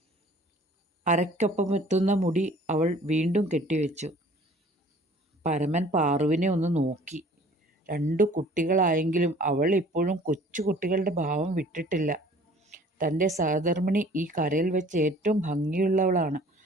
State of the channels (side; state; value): both; normal; correlation 0.52